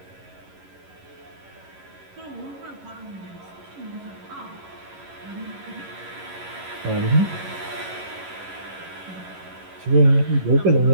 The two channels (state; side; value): late; left; 11 ms